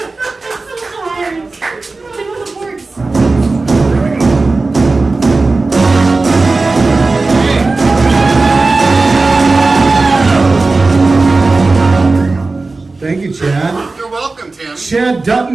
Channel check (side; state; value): left; quieter; 3.6 dB